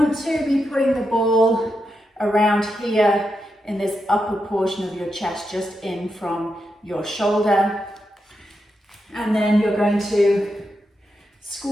to be putting the ball around here in this upper portion of your chest, just in from your shoulder. And then you're going to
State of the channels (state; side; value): normal; both; correlation 0.86